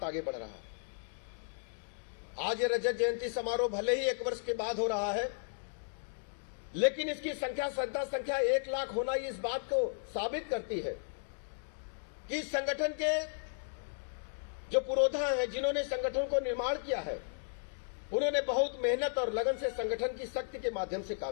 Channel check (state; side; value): silent; right; digital silence